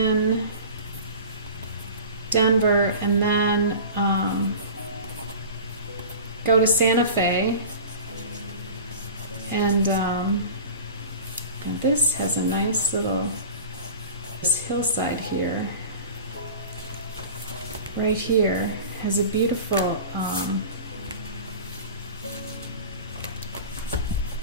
Denver, and then go to Santa Fe. And this has a nice little hillside here. Right here has a beautiful I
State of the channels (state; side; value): inverted; both; correlation -0.37